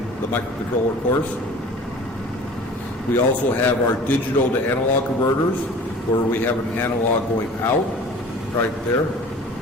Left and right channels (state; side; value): normal; both; correlation 0.44